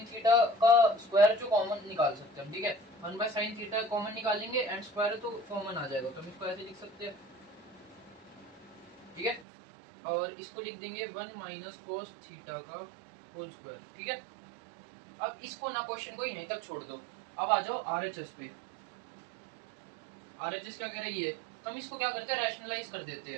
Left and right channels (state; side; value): drops out; left; at 9.5 s